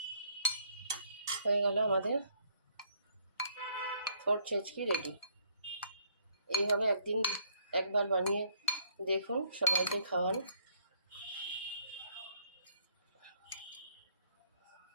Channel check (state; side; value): inverted; both; correlation -0.68